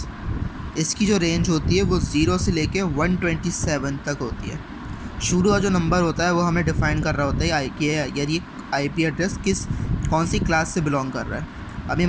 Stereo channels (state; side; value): identical; both; correlation 1.00